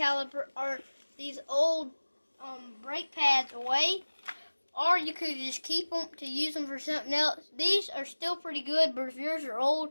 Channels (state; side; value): inverted; both; correlation -1.00